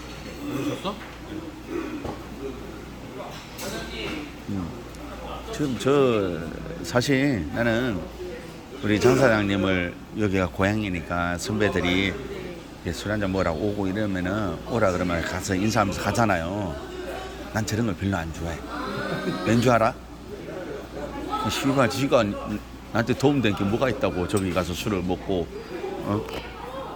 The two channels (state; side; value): identical; both; correlation 1.00